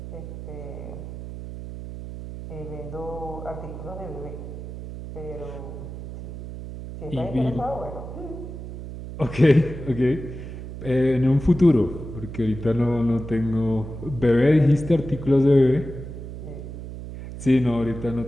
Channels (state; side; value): noise; right; hum, 10 dB below the sound